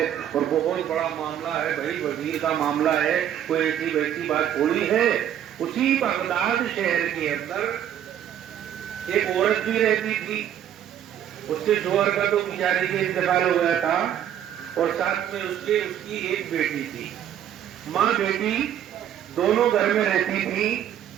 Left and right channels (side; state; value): left; quieter; 10.3 dB